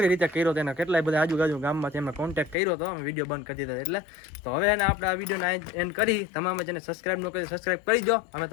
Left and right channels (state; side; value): drops out; right; at 2.6 s